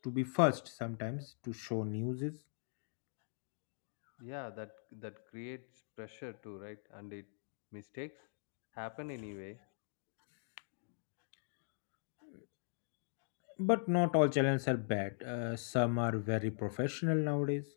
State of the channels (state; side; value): silent; right; digital silence